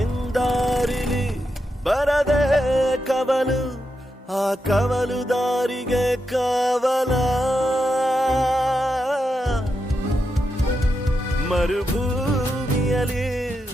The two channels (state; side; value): normal; both; correlation 0.86